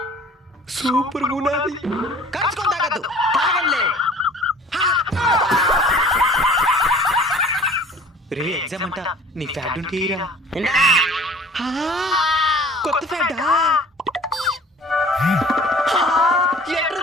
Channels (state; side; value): normal; both; correlation 0.48